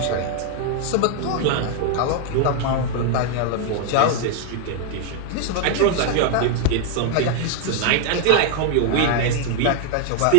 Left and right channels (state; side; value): different; both; correlation 0.00